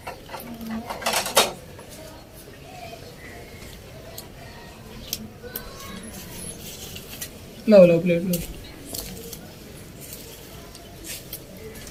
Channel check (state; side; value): identical; both; correlation 1.00